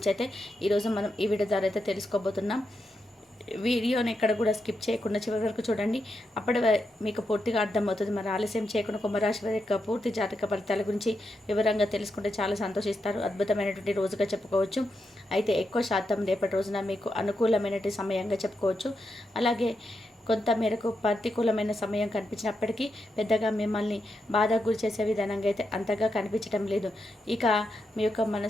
అయితే ఈరోజు మనం ఈ వీడియో ద్వారా అయితే తెలుసుకోబోతున్నాం. వీడియోని ఎక్కడ కూడా స్కిప్ చేయకుండా చివరి వరకు చూడండి. అప్పటి మీకు పూర్తిగా అర్థమవుతుంది. మరి ఆలస్యం చేయకుండా కుంభరాశి వారి యొక్క పూర్తి జాతక ఫలితాల గురించి వివరంగా తెలుసుకుంటే చాలా సంతోషిస్తారు. అద్భుతమైనటువంటి రోజుగా చెప్పుకోవచ్చు. అయితే ఎక్కువ శాతం రేపటి రోజున మీకు అనుకూలమైనటువంటి సమయంగా చెప్పుకోవచ్చు. అలాగే కొంత మేరకు ప్రతికూలమైన సమయం కనిపించినప్పటికీ పెద్దగా మిమ్మల్ని బాధకు గురి చేసే విధానంగా అయితే అంతగా కనిపించడం లేదు. ఇక మీ యొక్క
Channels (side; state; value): both; normal; correlation 0.85